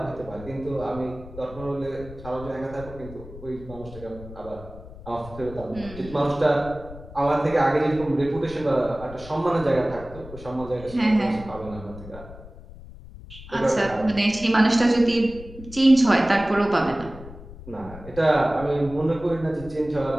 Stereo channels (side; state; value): left; noise; rumble, 15 dB below the sound